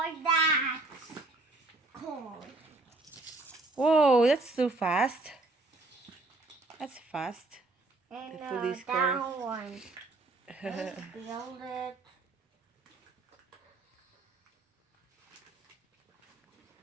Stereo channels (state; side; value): quieter; left; 3.2 dB